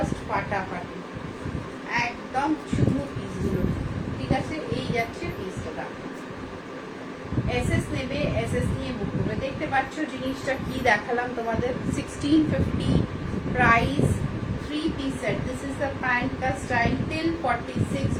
ফাটাফাটি, একদম চুমু পিসগুলো। ঠিক আছে, এই যাচ্ছে পিসটা দেখো। এসএস নেবে, এসএস নিয়ে বুক করবে। দেখতে পাচ্ছ জিনিসটা কি দেখালাম তোমাদের, 1650 price, three piece set. This is the pant का স্টাইল। টিল 46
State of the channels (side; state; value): both; identical; correlation 1.00